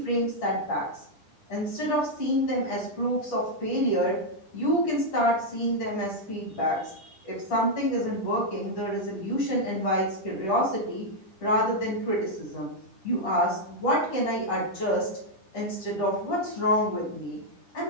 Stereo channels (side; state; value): right; late; 10 ms